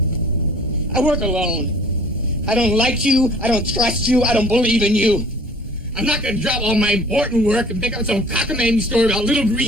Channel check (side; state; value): both; normal; correlation 0.50